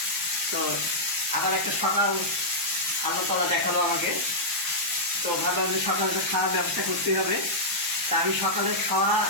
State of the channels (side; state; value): both; normal; correlation -0.09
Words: তো আবার একটা সকাল আল্লাহ তাআলা দেখালো আমাকে, তো ভাবলাম যে সকালে তো খাওয়ার ব্যবস্থা করতে হবে। তা আমি সকালে খাওয়া